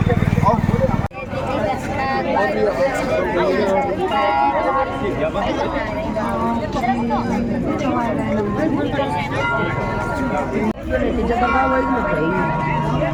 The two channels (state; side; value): identical; both; correlation 1.00